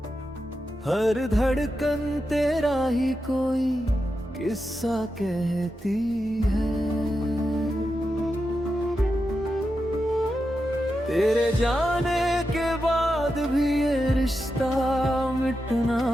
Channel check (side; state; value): both; normal; correlation 0.89